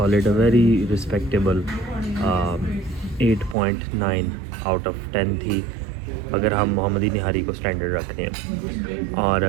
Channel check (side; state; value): left; drops out; at 3.6 s